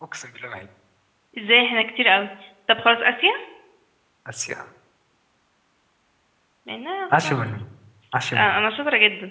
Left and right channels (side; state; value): both; identical; correlation 1.00